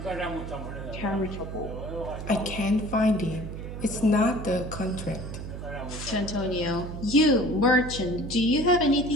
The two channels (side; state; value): right; noise; hum, 8 dB below the sound